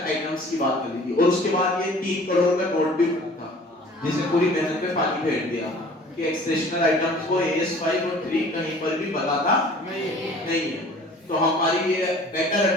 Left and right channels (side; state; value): both; normal; correlation 0.48